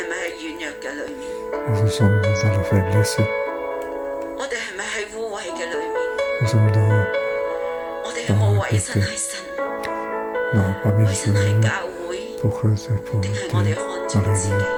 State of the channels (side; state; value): both; identical; correlation 1.00